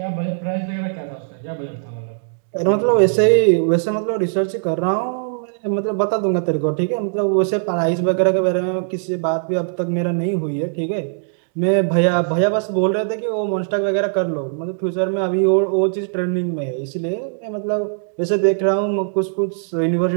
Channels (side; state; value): left; silent; digital silence